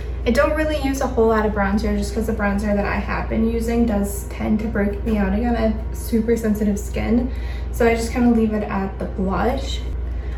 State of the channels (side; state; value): both; identical; correlation 1.00